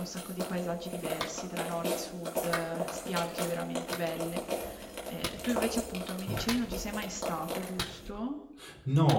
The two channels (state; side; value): identical; both; correlation 1.00